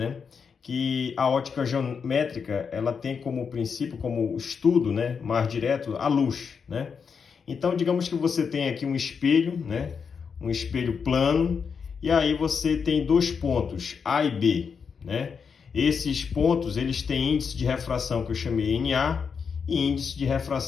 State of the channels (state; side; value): quieter; right; 6.1 dB